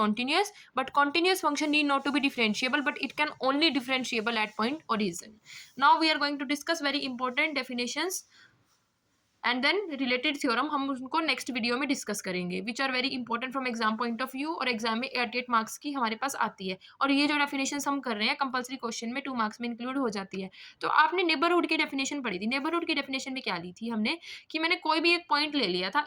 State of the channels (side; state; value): both; identical; correlation 1.00